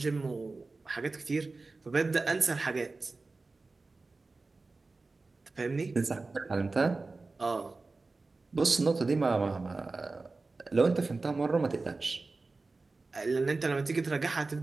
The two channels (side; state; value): left; quieter; 3.6 dB